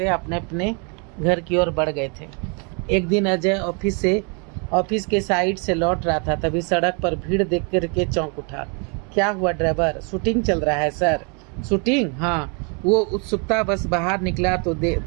अपने अपने घर की ओर बढ़ गए थे। एक दिन अजय ऑफिस के साइड से लौट रहा था, तभी सड़क पर भीड़ देख करके चौंक उठा। क्या हुआ ड्राइवर, शूटिंग चल रहा है सर? शूटिंग? हाँ। वो उत्सुकता बस बाहर निकला तो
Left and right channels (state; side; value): quieter; left; 35.3 dB